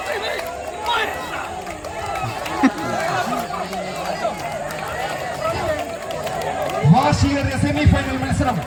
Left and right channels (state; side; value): identical; both; correlation 1.00